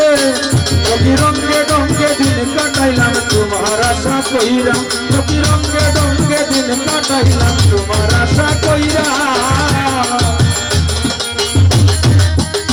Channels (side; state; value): both; identical; correlation 1.00